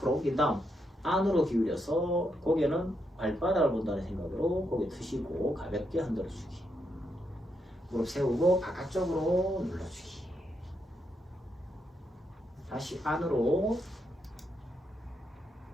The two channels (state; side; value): normal; both; correlation 0.80